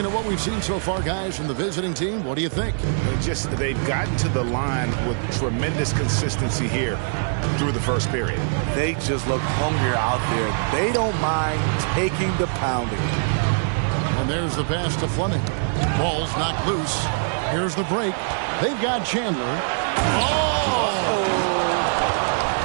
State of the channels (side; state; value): left; silent; digital silence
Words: at what we've seen so far, guys, from the visiting team, what do you think? They've gotten to the line with tremendous consistency here through the first period. They just look hungrier out there. They don't mind taking the pounding. And there's the pass to Fleming. Ball's knocked loose. Here's the break. They've got Chandler.